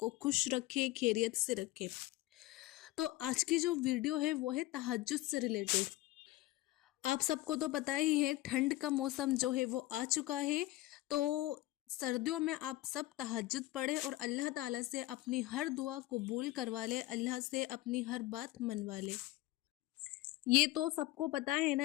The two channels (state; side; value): quieter; right; 17.6 dB